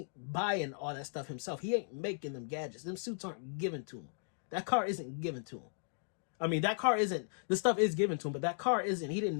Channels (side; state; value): right; silent; digital silence